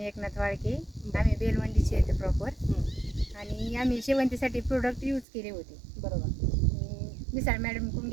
एकनाथ वाळके. आम्ही बेलवंडीचे येते प्रॉपर आणि आम्ही शेवंतीसाठी प्रोडक्ट यूज केले होते. बरोबर. मिसाळ मॅडमकडून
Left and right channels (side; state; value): left; drops out; at 5.2 s